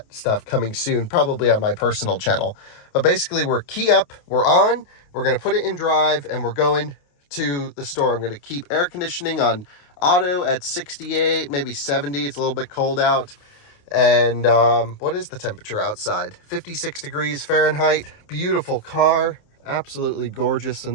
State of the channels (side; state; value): right; late; 28 ms